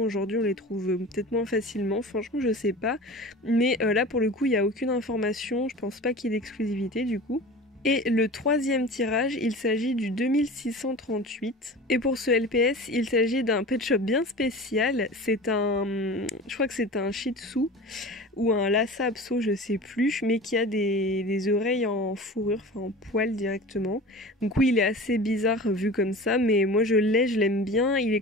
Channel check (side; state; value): both; normal; correlation 0.36